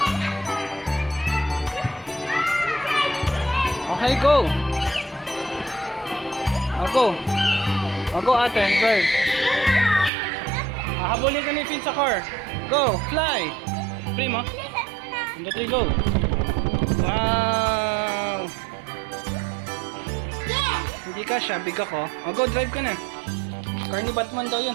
Okay, go. Go. Go, ate, drive. Hahabulin ka ni Finn sa car. Go, fly. Free mo. 1, 2, 3, go. Wow. Hindi ka siya, big ako. Go, drive ka na. Car ni Batman daw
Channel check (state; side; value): drops out; left; at 10.1 s